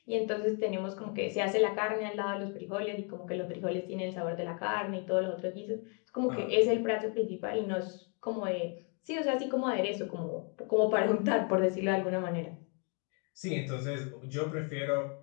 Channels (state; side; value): quieter; right; 38.2 dB